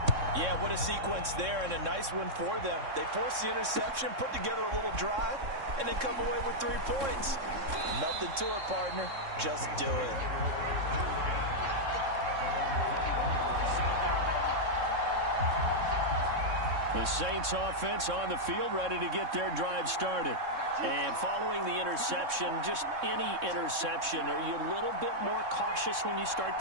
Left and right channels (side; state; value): left; late; 3.6 ms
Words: Yeah, what a sequence there, and a nice one for them. They forced the interception, put together a little drive, and then come away with 3 points. Nothing to it, partner. Just do it. The Saints offense on the field, ready to get their drive started. And following the interception, just any interception, are you a little bit more cautious when you start